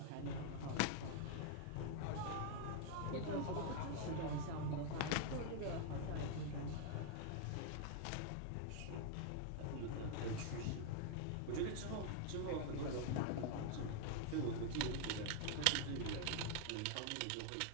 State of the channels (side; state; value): both; different; correlation 0.00